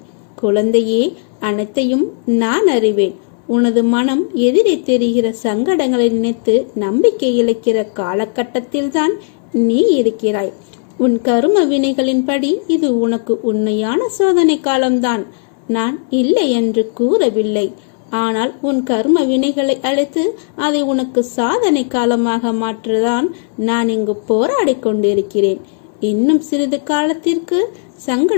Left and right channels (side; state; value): right; silent; 68 dB below the other